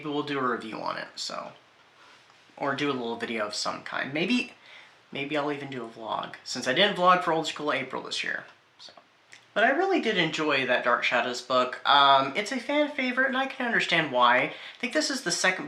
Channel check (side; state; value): both; identical; correlation 1.00